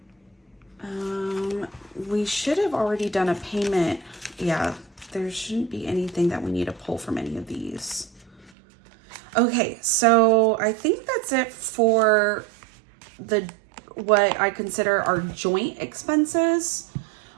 we should have already done a payment. Yeah, there shouldn't be anything that we need to pull from any of these. Okay, so I think that's it for what I consider our joint expenses.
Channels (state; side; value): drops out; left; at 8.5 s